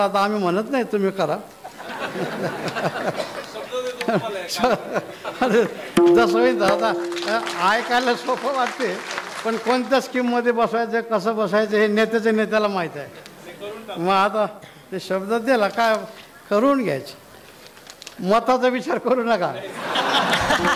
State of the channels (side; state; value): both; identical; correlation 1.00